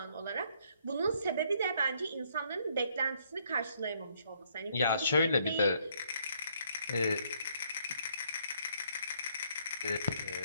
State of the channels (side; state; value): both; inverted; correlation -0.68